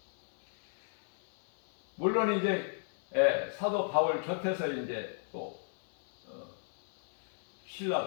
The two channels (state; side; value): silent; right; 55 dB below the other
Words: 물론 이제 사도 바울 곁에서 이제 또